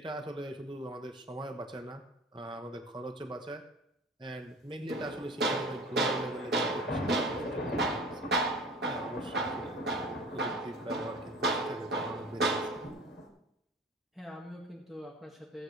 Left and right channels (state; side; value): normal; both; correlation 0.41